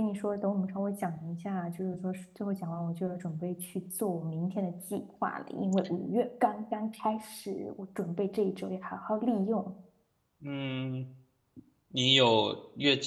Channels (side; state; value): both; identical; correlation 1.00